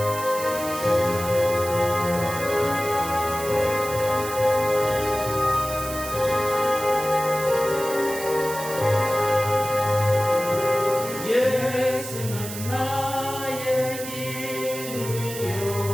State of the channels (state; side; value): noise; right; hiss, 10 dB below the sound